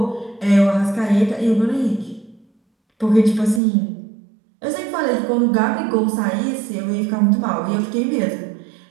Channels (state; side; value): drops out; left; at 3.6 s